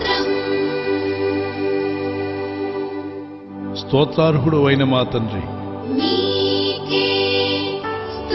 స్తోత్రార్హుడువైన మా తండ్రి, నీకే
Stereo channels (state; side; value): identical; both; correlation 1.00